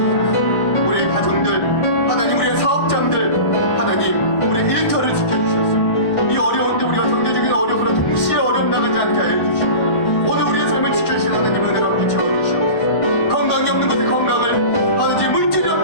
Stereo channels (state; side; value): late; right; 1.1 ms